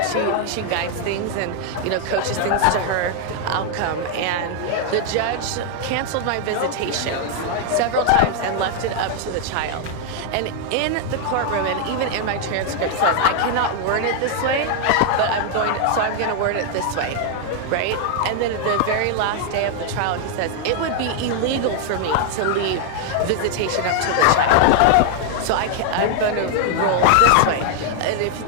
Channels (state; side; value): different; both; correlation 0.00